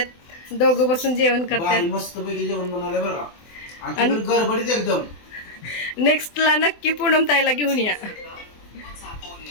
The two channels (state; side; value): late; right; 24 ms